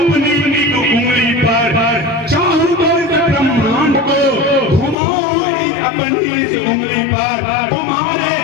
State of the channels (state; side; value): drops out; right; at 5.0 s